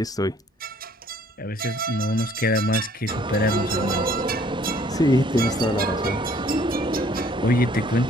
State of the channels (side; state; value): both; normal; correlation 0.59